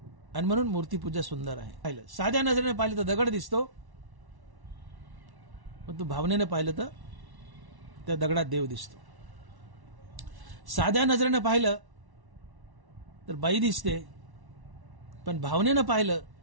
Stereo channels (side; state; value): left; late; 1.1 ms